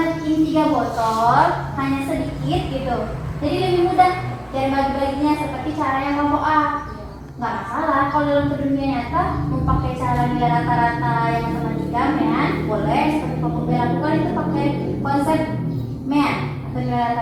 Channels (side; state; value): both; identical; correlation 1.00